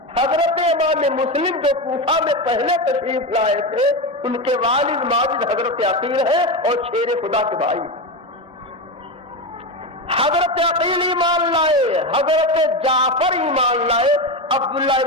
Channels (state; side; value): normal; both; correlation 0.17